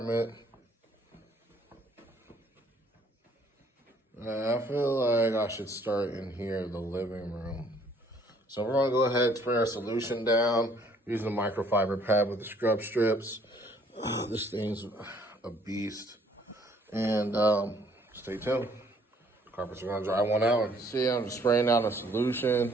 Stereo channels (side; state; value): both; normal; correlation 0.61